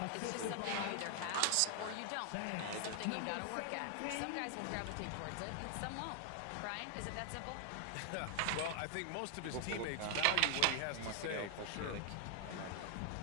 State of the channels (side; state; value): both; different; correlation 0.00